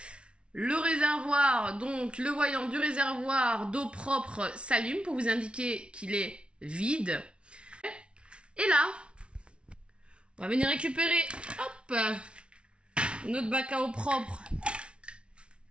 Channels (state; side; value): late; left; 0.058 ms